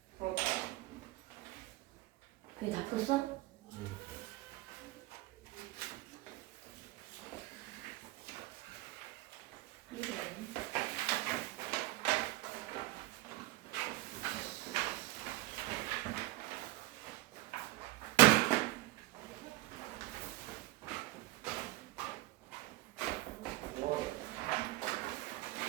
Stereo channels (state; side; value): quieter; left; 18.6 dB